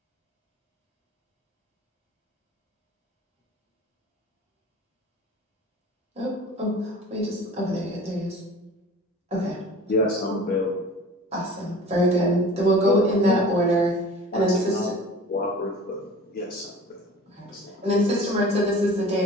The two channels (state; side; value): normal; both; correlation 0.42